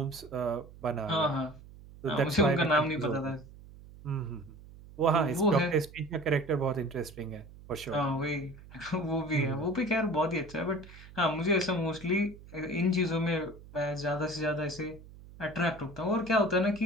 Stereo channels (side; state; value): right; noise; hum, 19 dB below the sound